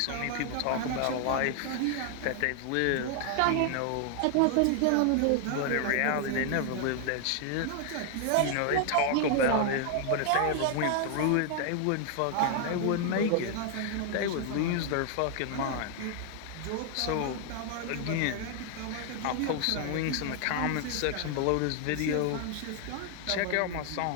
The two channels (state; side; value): different; both; correlation 0.00